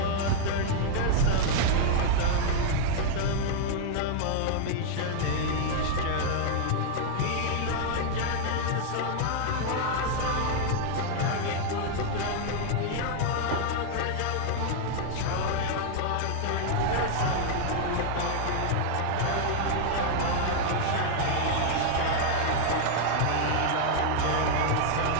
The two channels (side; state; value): both; different; correlation 0.00